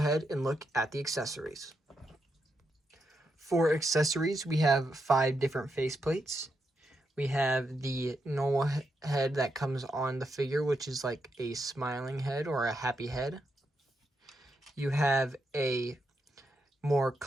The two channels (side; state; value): both; normal; correlation 0.83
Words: and look at the accessories. For accessories, we have 5 different faceplates. We have the normal head that comes on the figure, which is like a smiling head or a happy head. You have a more